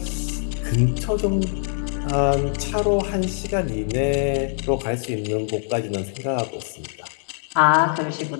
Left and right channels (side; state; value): right; silent; digital silence